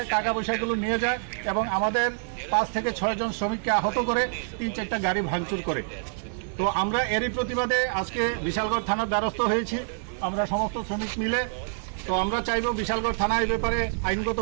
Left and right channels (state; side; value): silent; left; digital silence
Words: টাকা পয়সাগুলো নিয়ে যায় এবং আমাদের 5 থেকে 6 জন শ্রমিককে আহত করে 3-4টা গাড়ি ভাঙচুর করে। তো আমরা এরই প্রতিবাদে আজকে বিশালগড় থানার দ্বারস্থ হয়েছি, আমরা সমস্ত শ্রমিক মিলে। তো আমরা চাইব বিশালগড় থানা এই ব্যাপারে